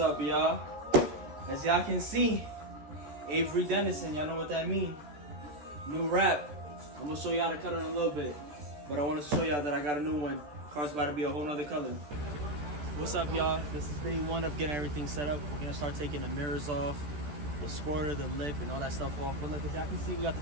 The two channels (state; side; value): late; left; 14 ms